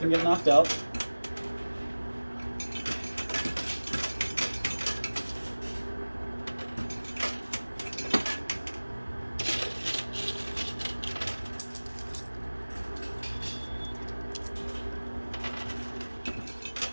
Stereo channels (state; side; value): inverted; both; correlation -1.00